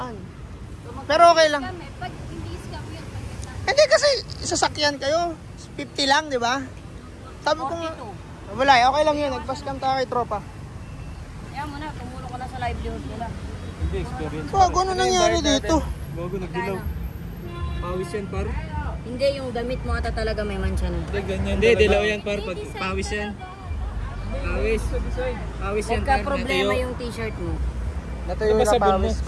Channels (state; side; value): identical; both; correlation 1.00